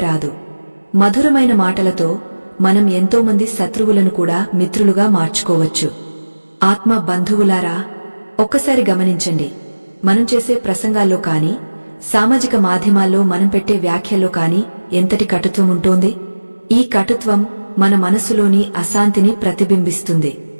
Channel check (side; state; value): both; inverted; correlation -1.00